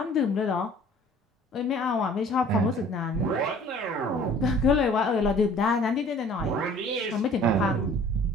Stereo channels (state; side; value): normal; both; correlation 0.51